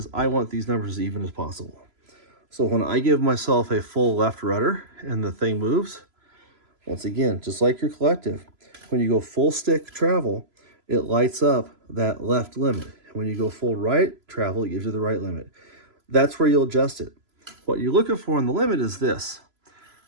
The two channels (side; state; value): left; late; 3.0 ms